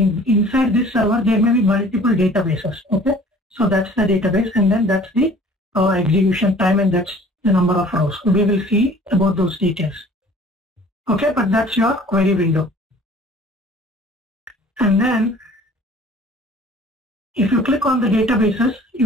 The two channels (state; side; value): normal; both; correlation 0.49